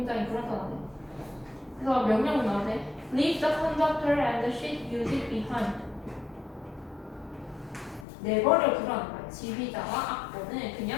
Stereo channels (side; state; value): right; drops out; at 8.1 s